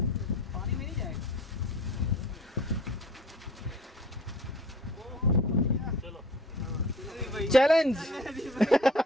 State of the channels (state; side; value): normal; both; correlation 0.46